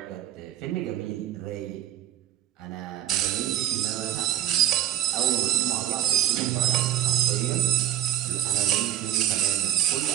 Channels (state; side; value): quieter; left; 11.8 dB